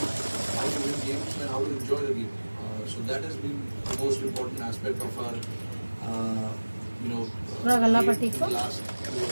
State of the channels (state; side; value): inverted; both; correlation -1.00